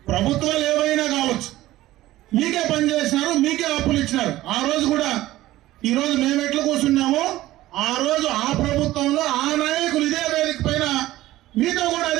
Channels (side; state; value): left; quieter; 16.0 dB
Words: ప్రభుత్వాలు ఏవైనా కావచ్చు, మీకే పనిచేసినారు, మీకే అప్పులు ఇచ్చినారు. ఆ రోజు కూడా ఈ రోజు మేము ఎట్లా కూర్చున్నామో ఆ రోజు ఆ ప్రభుత్వంలో ఆ నాయకులు ఇదే వేదిక పైన మీతో కూడా